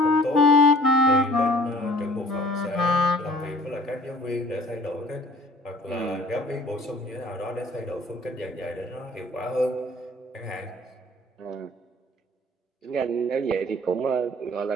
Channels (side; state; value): both; normal; correlation 0.51